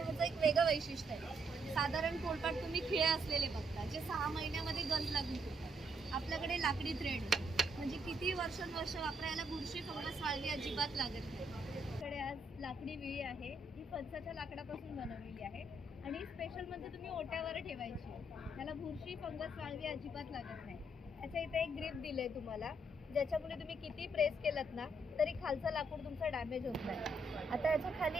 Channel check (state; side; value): normal; both; correlation 0.74